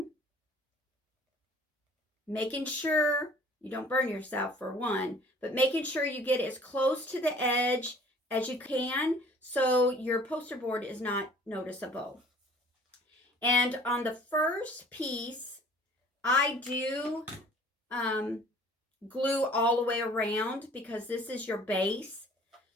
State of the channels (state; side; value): normal; both; correlation 0.51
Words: making sure you don't burn yourself for one, but making sure you get as close to the edge as you can so your poster board is not noticeable. And on the first piece, I do glue all the way around because this is your base.